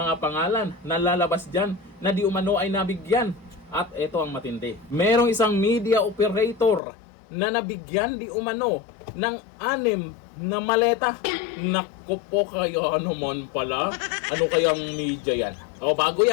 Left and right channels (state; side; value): drops out; right; at 6.8 s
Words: pangalan na lalabas dyan na di umano ay nabigyan. At ito ang matindi. Merong isang media operator na nabigyan di umano ng 6 na maleta. Naku po kayo naman pala. Ano kayang media yan? O bago